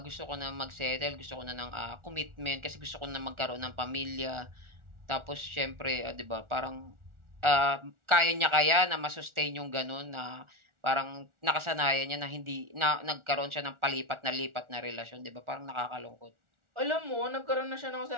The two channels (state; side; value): late; left; 1.4 ms